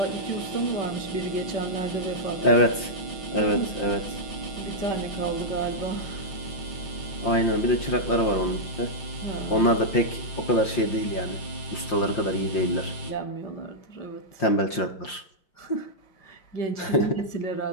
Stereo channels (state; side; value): late; right; 5.7 ms